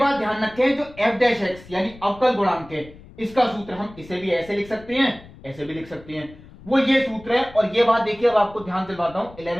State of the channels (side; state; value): left; noise; rumble, 20 dB below the sound